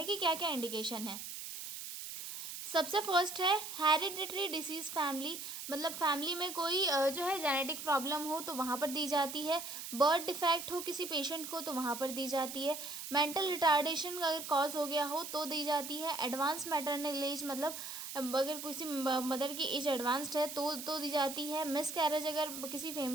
कि क्या क्या इंडिकेशन है। सबसे फर्स्ट है हेरिडिटरी डिसीज़ फैमिली, मतलब फैमिली में कोई जो है जेनेटिक प्रॉब्लम हो तो वहाँ पर दी जाती है। बर्थ डिफेक्ट हो किसी पेशेंट को तो वहाँ पर दी जाती है। मेंटल रिटार्डेशन अगर कॉज हो गया हो तो दी जाती है। एडवांस मैटरनल एज, मतलब अगर किसी मदर की एज एडवांस्ड है तो दी जाती है। मिस कैरेज अगर किसी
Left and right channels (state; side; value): noise; right; hiss, 8 dB below the sound